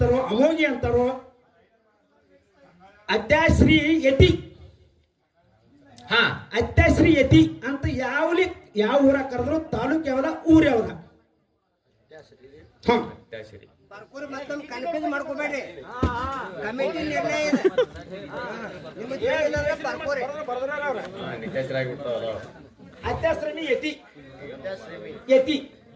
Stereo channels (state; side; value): identical; both; correlation 1.00